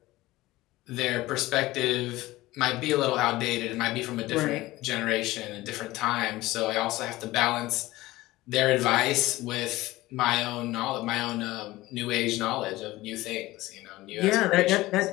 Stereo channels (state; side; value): quieter; right; 18.3 dB